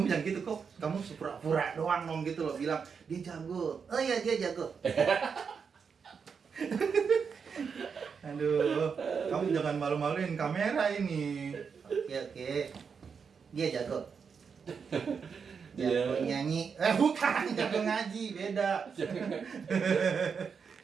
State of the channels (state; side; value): quieter; left; 6.1 dB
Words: jangan gitu kok. Kamu pura-pura doang dong gitu loh. Bilang, dia jago. Oh iya dia jago. Aduh, kamu jangan malu-maluin kamera ini. Oke. Dia jago. Jago nyanyi. Bukan, jago ngaji. Beda.